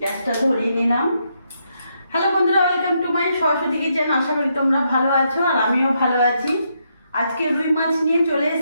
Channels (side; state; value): both; inverted; correlation -0.79